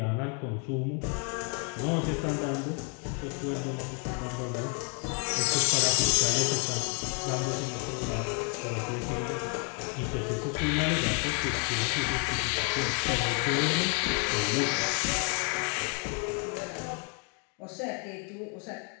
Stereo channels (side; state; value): right; quieter; 37.5 dB